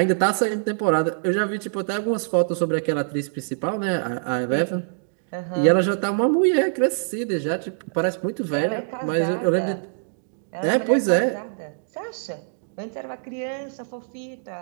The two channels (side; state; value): left; silent; digital silence